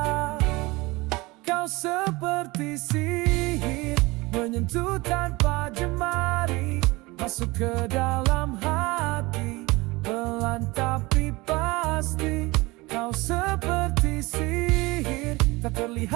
Kau seperti sihir, menyentuh tanpa jemari, masuk ke dalam hati, pelan tapi pasti. Kau seperti sihir, tak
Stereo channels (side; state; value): left; quieter; 22.6 dB